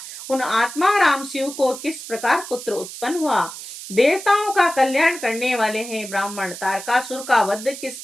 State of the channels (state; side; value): noise; right; hiss, 11 dB below the sound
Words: उन आत्माराम शिव को किस प्रकार पुत्र उत्पन्न हुआ। देवताओं का कल्याण करने वाले हैं ब्राह्मण, तारकासुर का वध किस